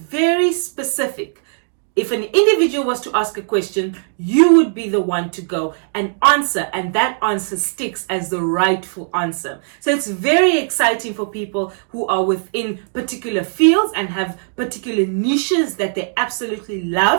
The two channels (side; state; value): left; silent; digital silence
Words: specific. If an individual was to ask a question, you would be the one to go and answer, and that answer sticks as the rightful answer. So it's very exciting for people who are within particular fields and have particular niches that they absolutely